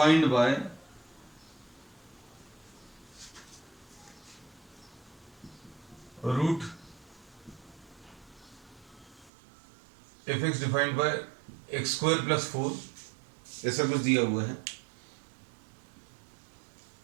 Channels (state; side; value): drops out; left; at 9.3 s